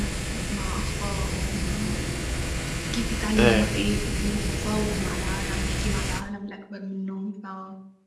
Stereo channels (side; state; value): both; identical; correlation 1.00